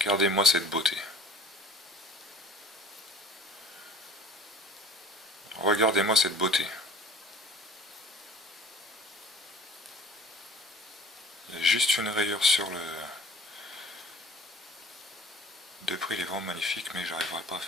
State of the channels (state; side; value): normal; both; correlation 0.47